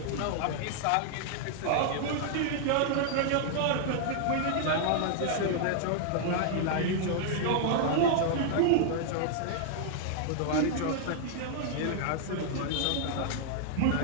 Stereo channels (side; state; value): both; different; correlation -0.01